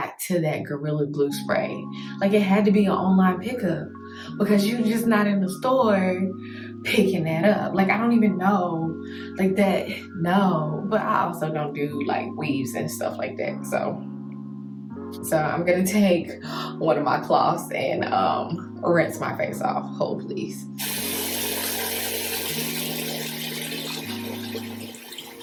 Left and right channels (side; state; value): both; identical; correlation 1.00